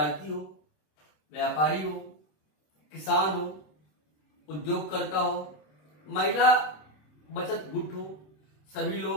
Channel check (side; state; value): right; late; 26 ms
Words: हो, व्यापारी हो, किसान हो, उद्योगकर्ता हो, महिला बचत गुट हो, सभी